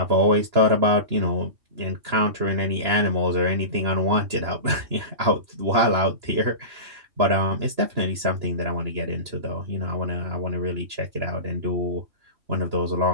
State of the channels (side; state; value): left; late; 2.9 ms